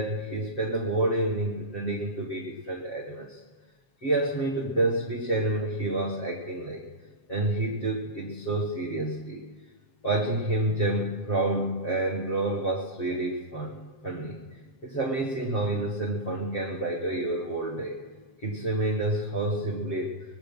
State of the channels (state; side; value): late; right; 7.5 ms